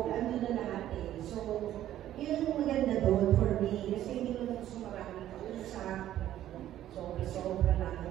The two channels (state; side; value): quieter; left; 12.5 dB